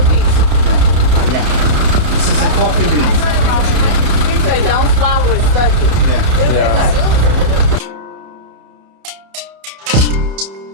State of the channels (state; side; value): late; left; 30 ms